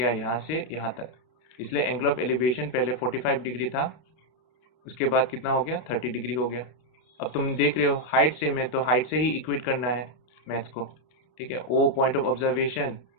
यहाँ से यहाँ तक, इसलिए एंगल ऑफ एलिवेशन पहले 45 डिग्री था, उसके बाद कितना हो गया, 30 डिग्री हो गया. अब तुम देख रहे हो हाइट सेम है, तो हाइट से ही इक्वेट करना है मैथ्स को, ठीक है. ओ पॉइंट ऑफ ऑब्जर्वेशन,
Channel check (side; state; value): right; late; 32 ms